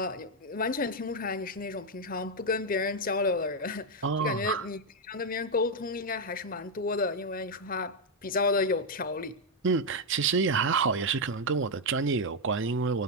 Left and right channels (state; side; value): normal; both; correlation 0.02